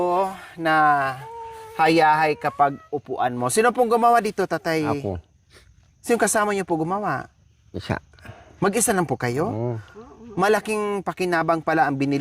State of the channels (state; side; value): identical; both; correlation 1.00